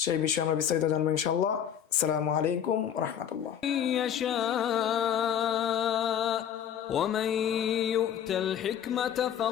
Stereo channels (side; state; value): right; quieter; 9.3 dB